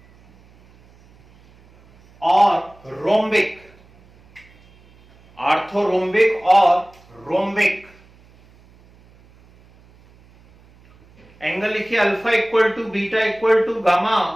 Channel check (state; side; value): noise; right; hum, 28 dB below the sound